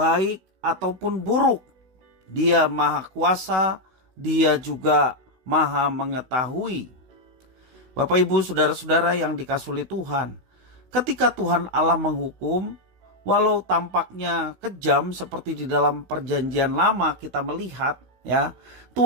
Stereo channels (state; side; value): late; left; 16 ms